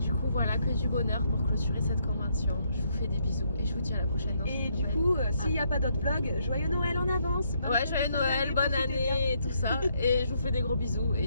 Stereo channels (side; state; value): both; inverted; correlation -0.73